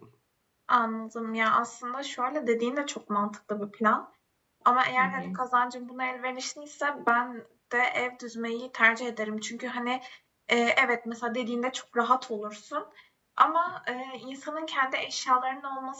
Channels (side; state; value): both; identical; correlation 1.00